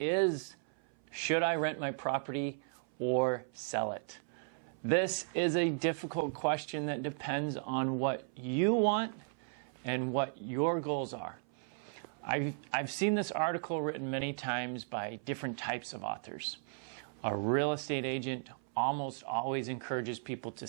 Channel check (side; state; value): left; silent; 54 dB below the other